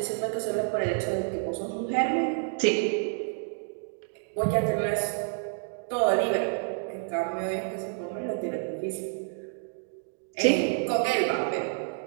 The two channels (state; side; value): silent; left; digital silence